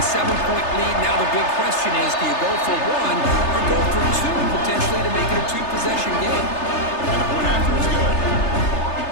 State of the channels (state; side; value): late; right; 3.3 ms